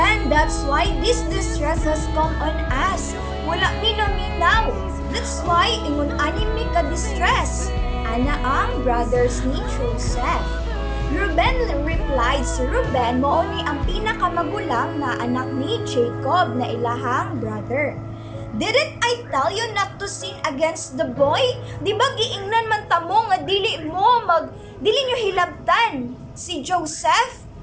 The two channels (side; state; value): both; identical; correlation 1.00